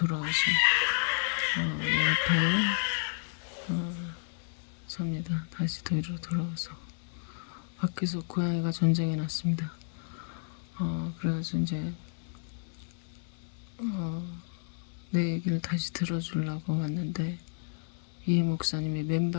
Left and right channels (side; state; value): right; silent; 57 dB below the other